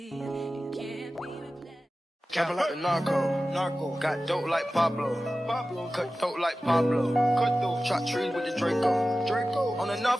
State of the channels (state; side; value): normal; both; correlation 0.95